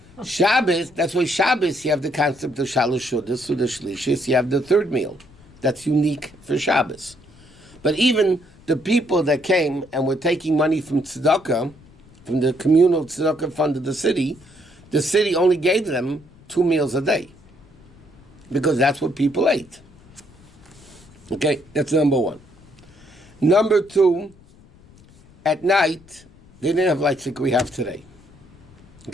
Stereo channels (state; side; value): noise; left; rumble, 26 dB below the sound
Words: Shabbos, that's why Shabbos, you have the concept of Shalosh Shudas, Suda Shlishis, you have the 3rd meal. That's unique for Shabbos. But even the people that came and were taking money from tzedakah, from the communal tzedakah fund of the city only gave them 2 meals a day. Because that's what people ate. Okay, that's number 1. Number 2, at night, they didn't have lights like we have today.